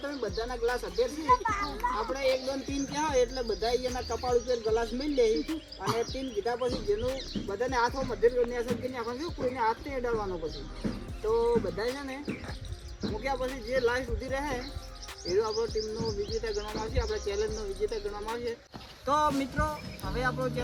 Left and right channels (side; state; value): both; identical; correlation 1.00